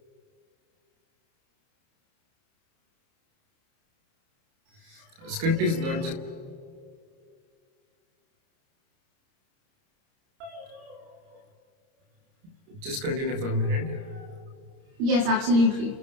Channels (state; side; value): late; left; 30 ms